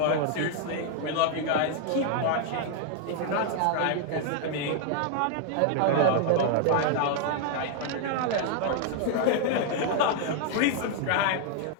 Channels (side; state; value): both; different; correlation 0.00